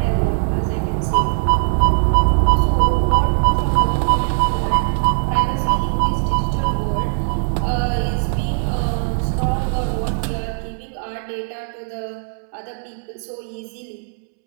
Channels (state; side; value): silent; left; 66 dB below the other